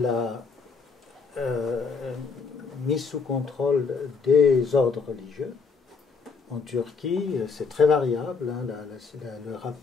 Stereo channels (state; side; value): quieter; right; 5.0 dB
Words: mise sous contrôle des ordres religieux. En Turquie, c'est très variable. Hein, le